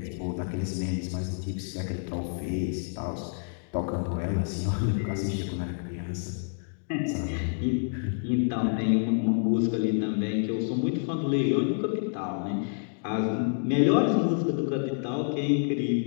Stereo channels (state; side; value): silent; right; digital silence